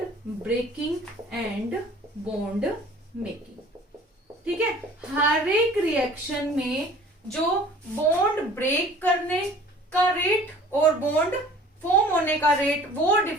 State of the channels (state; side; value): normal; both; correlation 0.48